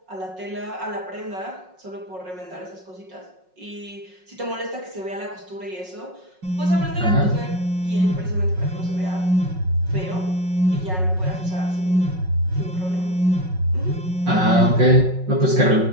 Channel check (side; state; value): left; late; 5.4 ms